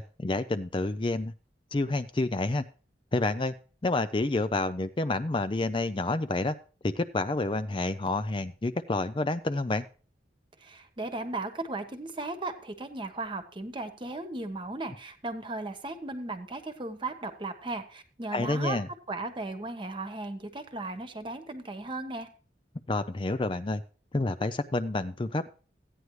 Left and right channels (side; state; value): both; normal; correlation 0.56